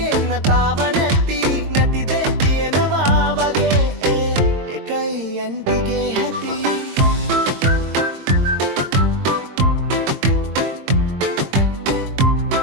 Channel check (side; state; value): left; late; 22 ms